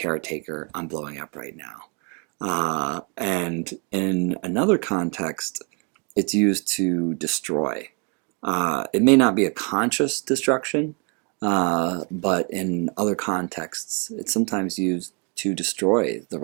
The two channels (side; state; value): left; quieter; 35.9 dB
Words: I'm blowing up right now. And in another context, it's used to destroy. It may not be a conscious destruction, but in other contexts, it's sometimes used to destroy the